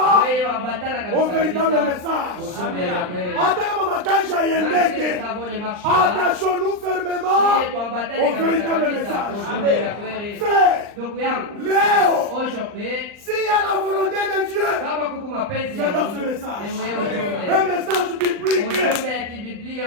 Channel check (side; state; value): left; late; 39 ms